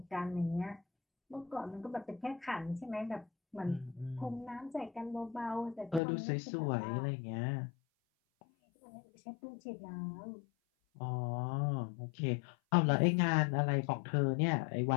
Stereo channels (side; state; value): right; drops out; at 6.0 s